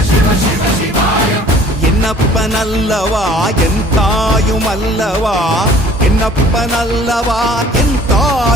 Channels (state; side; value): normal; both; correlation 0.52